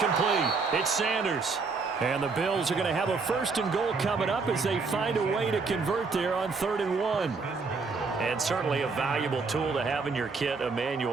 It's Sanders. And the Bills are going to have a 1st and goal coming up as they find a way to convert there on 3rd and 1. And certainly a valuable tool to have in your kit,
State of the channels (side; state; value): left; quieter; 4.5 dB